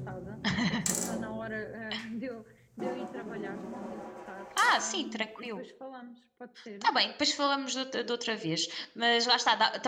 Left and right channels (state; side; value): identical; both; correlation 1.00